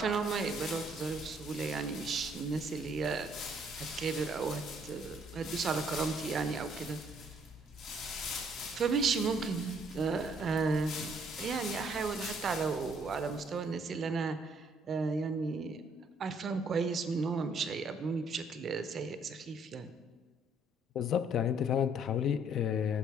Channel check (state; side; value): normal; both; correlation 0.65